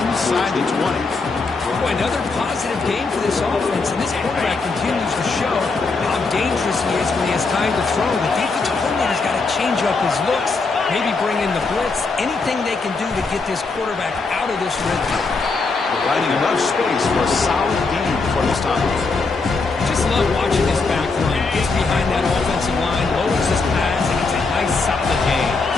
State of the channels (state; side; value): quieter; right; 4.1 dB